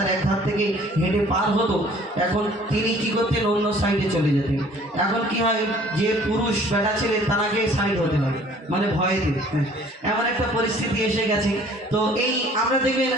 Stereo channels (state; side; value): normal; both; correlation 0.54